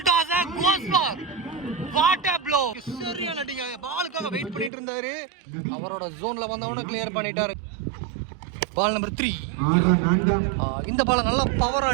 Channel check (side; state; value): left; drops out; at 4.7 s